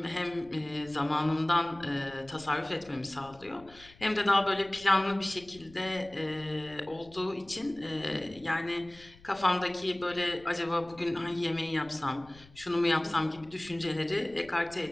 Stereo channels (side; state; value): left; noise; rumble, 24 dB below the sound